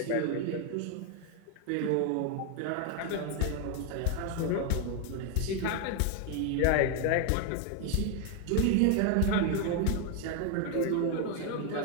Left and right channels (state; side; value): different; both; correlation 0.01